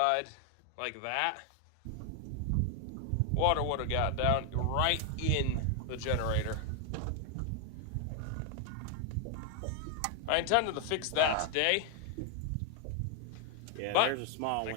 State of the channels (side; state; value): both; different; correlation 0.00